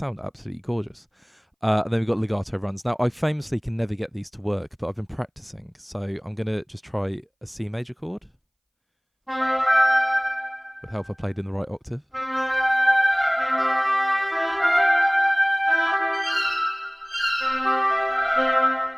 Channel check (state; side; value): identical; both; correlation 1.00